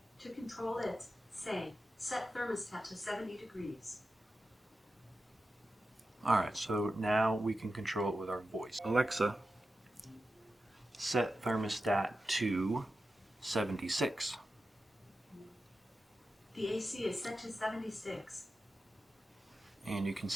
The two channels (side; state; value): both; normal; correlation 0.92